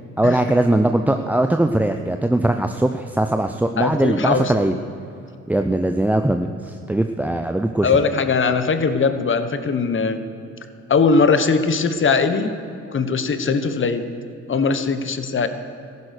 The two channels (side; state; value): both; normal; correlation 0.52